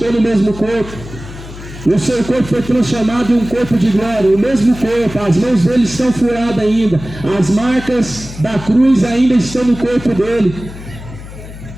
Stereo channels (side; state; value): left; noise; hum, 14 dB below the sound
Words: no mesmo corpo. O seu corpo foi transformado em um corpo de glória. O mesmo corpo, as mãos dele estão furadas ainda. As marcas da cruz ainda estão no corpo dele.